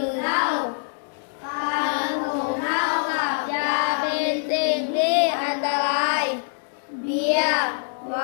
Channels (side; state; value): right; silent; digital silence